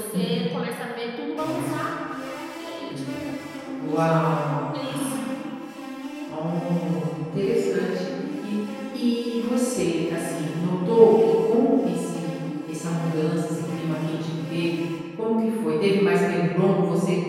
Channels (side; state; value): both; identical; correlation 1.00